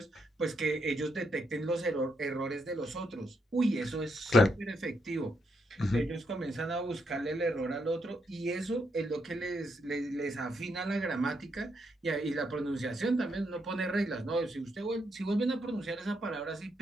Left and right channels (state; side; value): normal; both; correlation 0.78